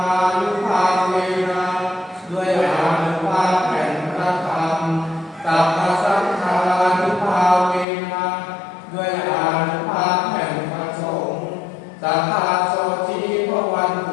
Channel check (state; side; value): drops out; right; at 7.9 s